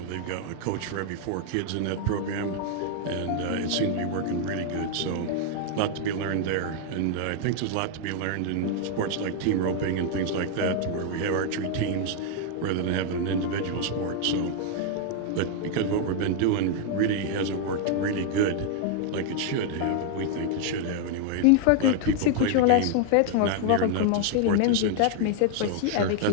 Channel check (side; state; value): both; different; correlation 0.00